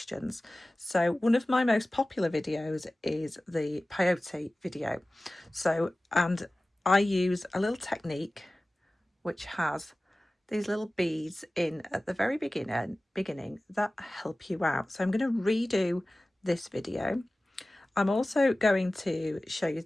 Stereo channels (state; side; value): normal; both; correlation 0.97